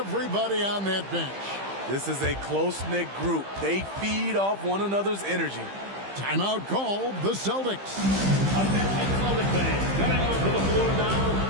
on that bench. This is a close-knit group. They feed off one another's energy. Timeout called the Celtics. Attention Celtics fans, coming onto the floor now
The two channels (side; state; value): left; late; 15 ms